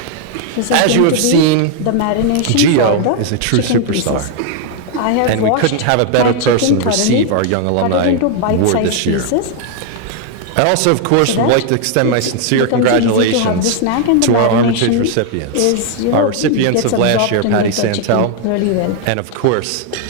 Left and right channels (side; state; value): both; different; correlation 0.00